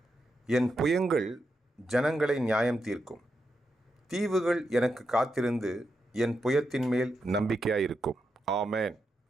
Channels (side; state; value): both; normal; correlation 0.85